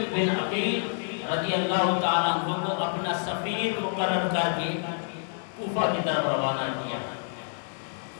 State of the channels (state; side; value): silent; right; digital silence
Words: بن عقیل رضی اللہ تعالیٰ عنہ کو اپنا سفیر مقرر کر کے کوفہ کی طرف روانہ کیا.